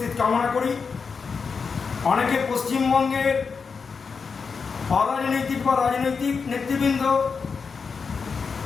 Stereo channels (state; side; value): quieter; right; 5.4 dB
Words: কামনা করি। অনেকে পশ্চিমবঙ্গের অরাজনৈতিক বা রাজনৈতিক নেতৃবৃন্দ